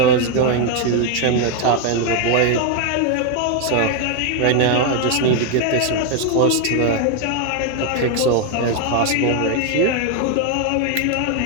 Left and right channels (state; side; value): different; both; correlation 0.01